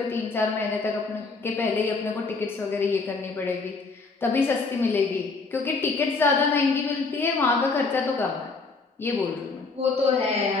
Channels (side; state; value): right; quieter; 4.1 dB